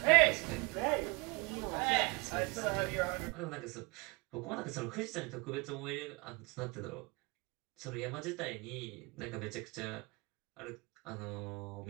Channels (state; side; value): quieter; left; 27.5 dB